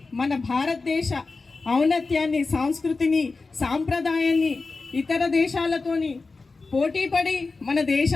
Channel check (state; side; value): quieter; right; 3.9 dB